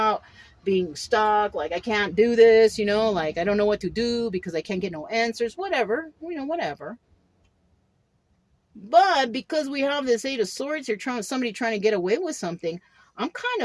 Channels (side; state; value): both; identical; correlation 1.00